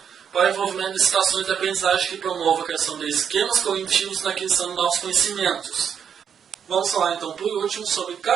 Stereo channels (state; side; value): quieter; left; 7.8 dB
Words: para o envolvimento de situações de aprendizagem que promovam a criação de esquemas cognitivos na aquisição de novos conhecimentos. Vamos falar então por último sobre